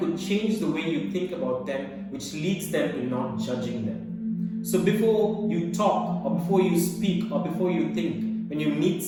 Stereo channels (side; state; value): both; identical; correlation 1.00